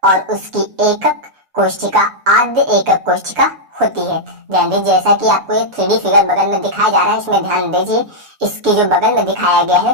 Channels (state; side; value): late; left; 6.9 ms